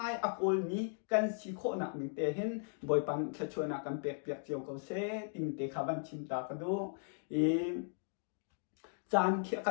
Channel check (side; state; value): right; silent; digital silence